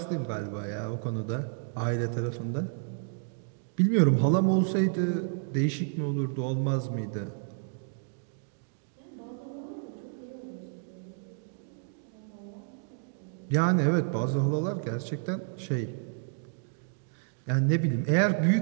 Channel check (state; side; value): silent; left; digital silence